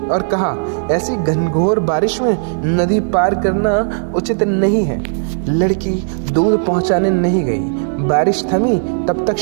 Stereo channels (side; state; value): left; silent; 69 dB below the other